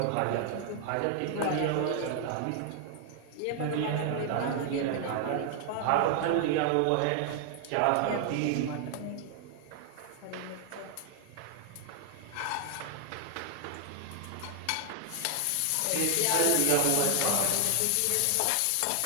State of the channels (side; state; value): both; different; correlation 0.00